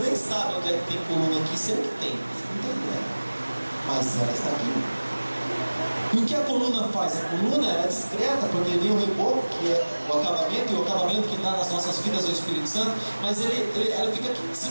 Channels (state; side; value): inverted; both; correlation -1.00